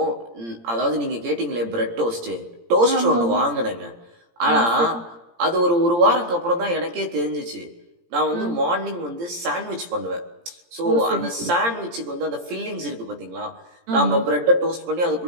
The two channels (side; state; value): left; late; 17 ms